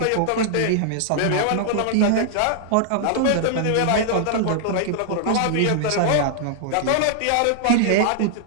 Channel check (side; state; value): both; different; correlation -0.01